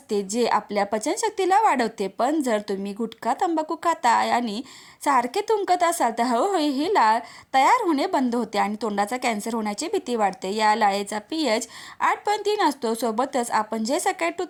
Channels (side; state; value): both; identical; correlation 1.00